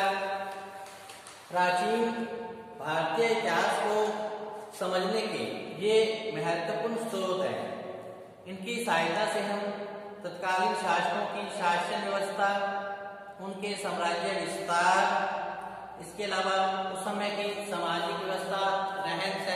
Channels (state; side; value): identical; both; correlation 1.00